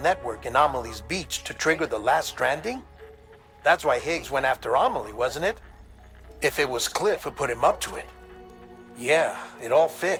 in Amelie's beach to trigger the last stranding? That's why Higgs went after Amelie, wasn't it? If it was Cliff who put him up to it. Yeah, it all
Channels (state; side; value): identical; both; correlation 1.00